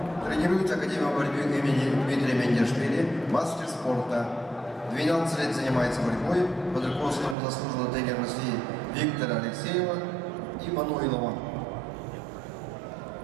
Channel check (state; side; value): drops out; left; at 7.4 s